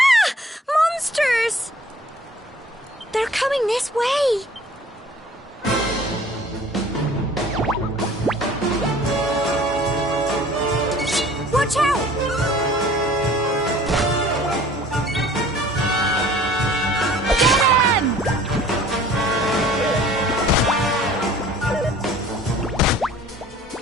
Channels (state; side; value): normal; both; correlation 0.50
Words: Monsters! They're coming this way. Watch out!